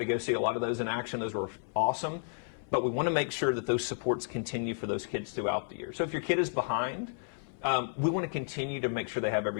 go see a lot of those in action. Those were awesome. But we want to make sure that those supports continue for those kids throughout the year. So if your kid is behind, we want to continue to make sure they have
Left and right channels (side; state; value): right; silent; 56 dB below the other